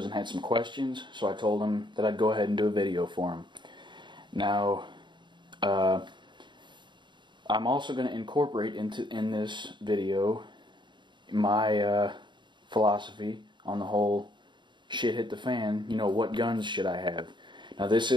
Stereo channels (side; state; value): left; late; 0.23 ms